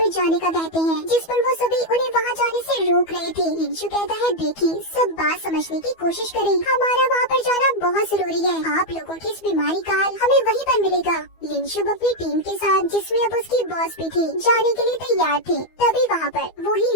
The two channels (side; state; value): right; late; 12 ms